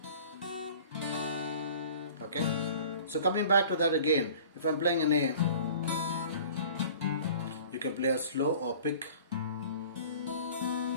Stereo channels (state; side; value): inverted; both; correlation -0.46